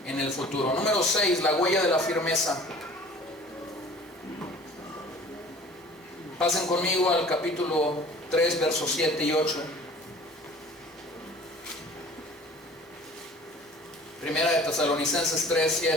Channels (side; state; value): both; normal; correlation 0.47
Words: en el futuro. Número 6, la huella de la firmeza. Pasen conmigo al capítulo 3, versos 7 y 8. Primera de Tesalonicenses 3,